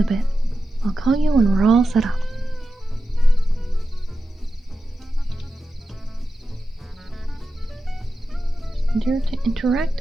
a bit? I'll call you when we're all set up. Dare to interact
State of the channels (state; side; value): normal; both; correlation 0.91